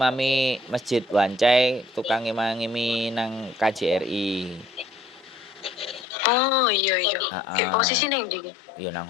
Masjid Wancai, tukang imami nang KJRI. Oh iya. Posisi ning ndi? Ya nang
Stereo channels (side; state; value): right; drops out; at 6.1 s